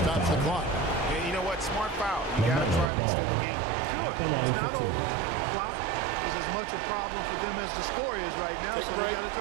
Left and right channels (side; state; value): left; drops out; at 2.9 s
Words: the clock. You know what? what? Smart foul. You got to try and extend the game. Sure, it's not over. Clock is as much a problem for them as the score is right now, so they got to